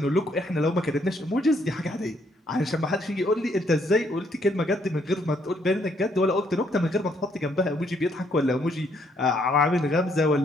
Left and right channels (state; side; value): normal; both; correlation 0.70